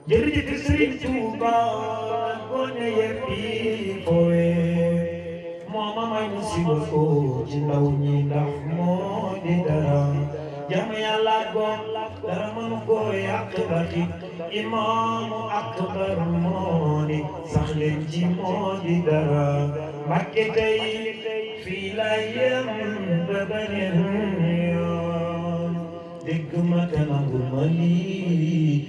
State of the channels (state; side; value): identical; both; correlation 1.00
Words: jërëjëf Sëriñ Tuuba gone yeppi foowe moo ma may mu siba ko ci ndaw ñi ndax moo di dara jàmm Yàlla goom dara mënu ko yàq baxi imaamu akbar moo ni sax leen ci moo di dara Mbàkke tey fii la yem ba beneen yoon dégg ma te nangu ma